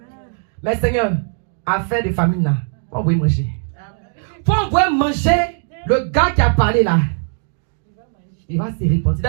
Mais Seigneur, affaire de famine là, faut envoyer manger. Faut envoyer manger le gars qui a parlé là. Il va se répandre.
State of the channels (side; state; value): left; silent; 62 dB below the other